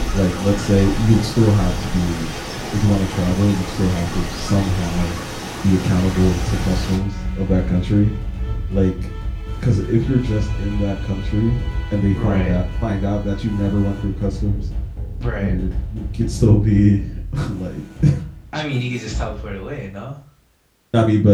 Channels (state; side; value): identical; both; correlation 1.00